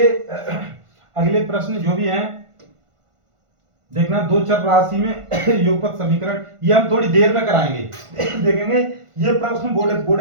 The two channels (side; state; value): left; late; 1.5 ms